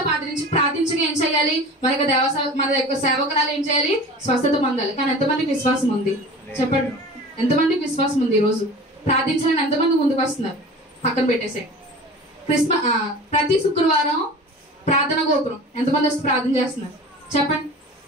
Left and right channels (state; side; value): normal; both; correlation 0.38